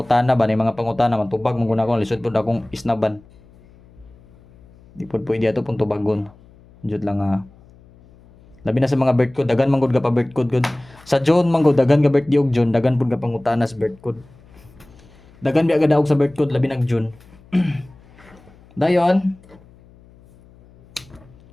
ba ni mga pangutana matubag mong guna ko lisod pud akong isnaban di pud pwede ato pun tubagon jud lang labi na sa mga birth code dagan man gud ka pa birth code sa June man gud dagan ka birthday og June dagan pud ka pangutana sa birth code dagan biya gadaog sa birth code labi nag June dayon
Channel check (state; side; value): noise; left; hum, 26 dB below the sound